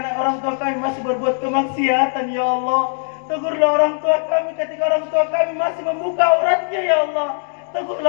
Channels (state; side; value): silent; right; digital silence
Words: orang tua kami masih berbuat kemaksiatan ya Allah. Tegurlah orang tua kami ketika orang tua kami masih membuka auratnya ya Allah.